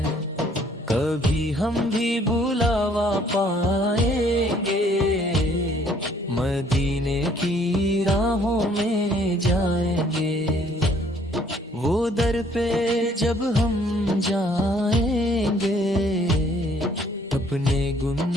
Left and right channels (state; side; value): normal; both; correlation 0.61